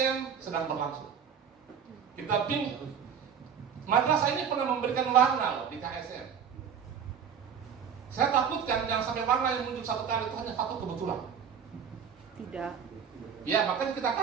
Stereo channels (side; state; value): left; quieter; 7.4 dB